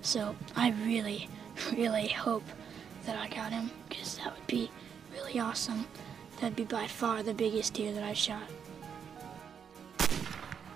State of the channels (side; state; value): left; quieter; 7.4 dB